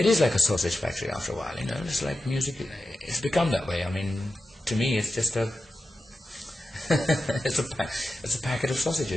is like a sausage factory after a while, It's like music. It's become that way. I mean, to me, it's just it's a packet of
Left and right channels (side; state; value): both; normal; correlation 0.92